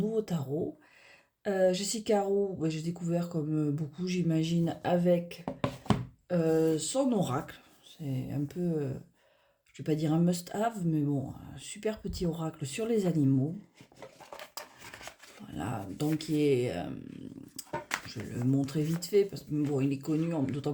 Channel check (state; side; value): identical; both; correlation 1.00